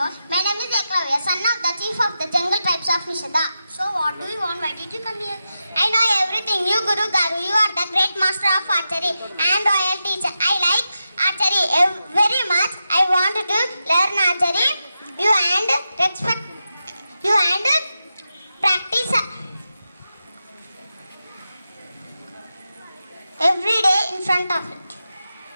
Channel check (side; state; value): both; inverted; correlation -0.89